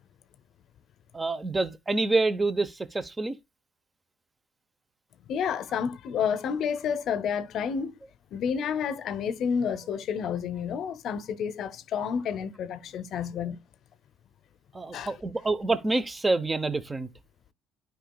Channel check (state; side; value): normal; both; correlation 0.78